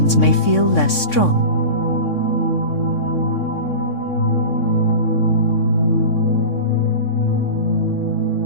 may feel less strong.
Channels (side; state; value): right; late; 3.6 ms